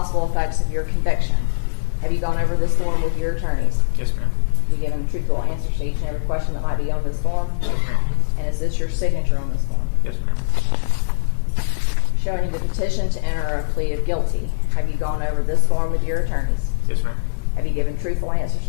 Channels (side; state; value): right; silent; digital silence